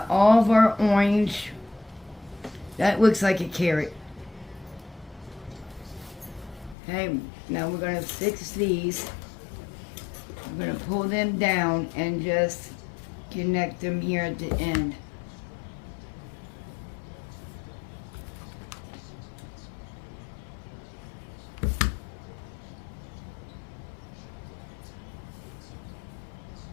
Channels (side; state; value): right; drops out; at 6.8 s